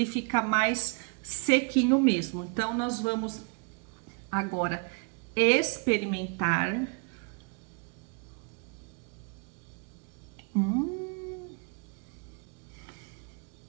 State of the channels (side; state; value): left; quieter; 35.7 dB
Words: fica mais sequinho mesmo. Então, nós vamos agora experimentar.